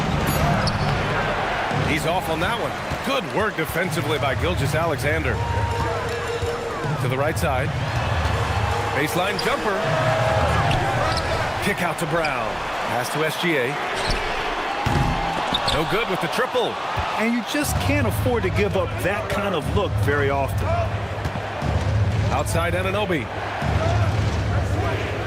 He's off on that one. Good work defensively by Gilgeous-Alexander. To the right side. Baseline jumper. Kick out to Brown. Pass to SGA. No good with the triple. And you just can't afford to give up that kind of look very often. Outside Anunoby.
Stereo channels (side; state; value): both; identical; correlation 1.00